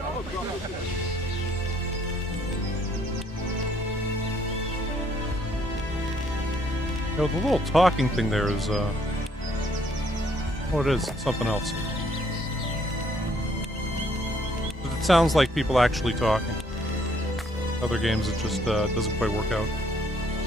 Yo, the little talking thing there is, what it is, it's something else. It sounds like people actually talking. Other games, it just doesn't quite work out.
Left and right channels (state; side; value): normal; both; correlation 0.66